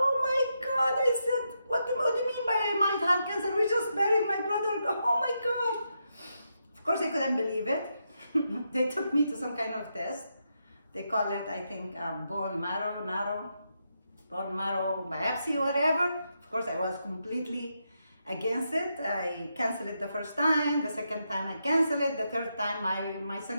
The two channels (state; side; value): inverted; both; correlation -0.83